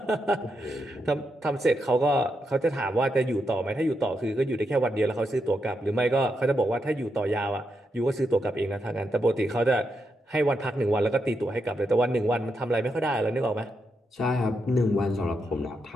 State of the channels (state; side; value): normal; both; correlation 0.83